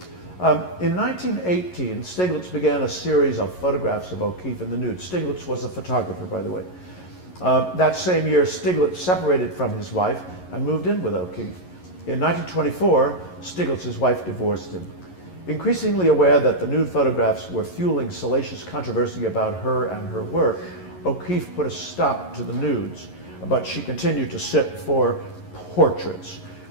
In 1918, Stieglitz began a series of photographs of O'Keeffe in the nude. Stieglitz was a photographer, by the way. That same year, Stieglitz separated from his wife and moved in with O'Keeffe. In 1924, Stieglitz's wife divorced him. Increasingly aware that the nude photographs were fueling salacious controversy about her and her work, O'Keeffe put a stop to the nudes, but she continued to sit for portraits,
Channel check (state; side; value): late; right; 11 ms